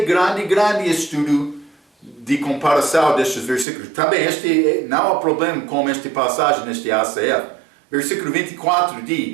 grande estudo de comparação destes versículos. Também não há problema com esta passagem neste ACF. Versículo 24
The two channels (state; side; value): drops out; left; at 3.7 s